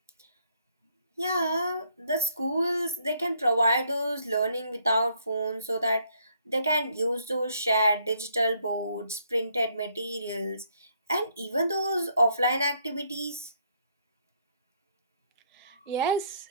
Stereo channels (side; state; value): both; inverted; correlation -0.69